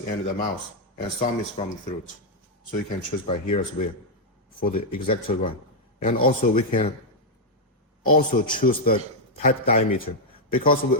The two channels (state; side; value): normal; both; correlation -0.02